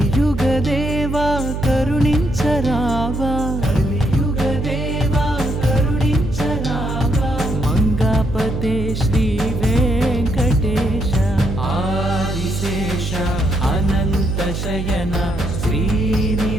కరుణించరావా కలియుగదేవా కరుణించరావా మంగాపతే శ్రీ వెంకటేశ ఆదిశేష అనంత శయన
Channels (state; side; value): noise; right; hum, 4 dB below the sound